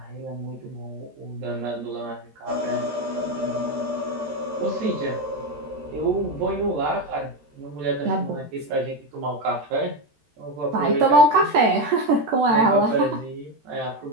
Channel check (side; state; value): left; late; 13 ms